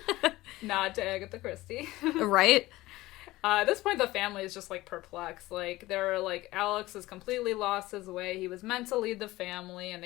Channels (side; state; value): right; quieter; 18.3 dB